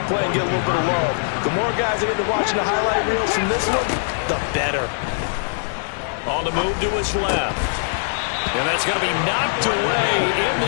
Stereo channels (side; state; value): right; silent; digital silence